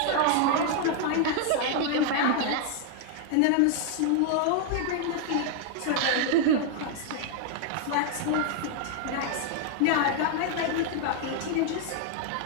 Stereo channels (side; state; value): both; different; correlation 0.00